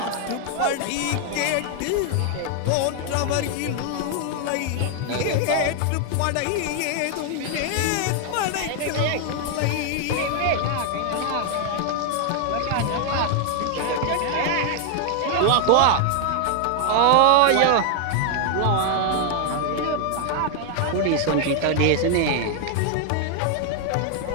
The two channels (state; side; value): different; both; correlation 0.00